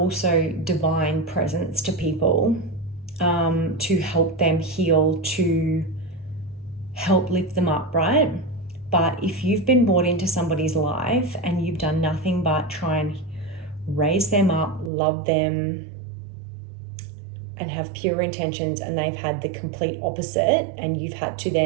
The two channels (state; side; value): drops out; left; at 14.9 s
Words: divine presence to people, to help them heal, to help lift them up, right? But if you've been brought into somebody's life and you've done nothing but try and raise them up, love them, and have pure intentions, and they've had the complete opposite, and you've had to